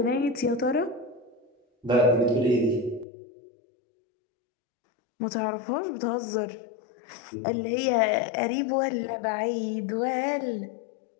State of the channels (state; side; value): drops out; right; at 3.1 s